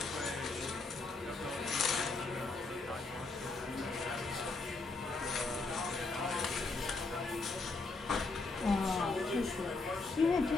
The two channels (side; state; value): right; quieter; 3.6 dB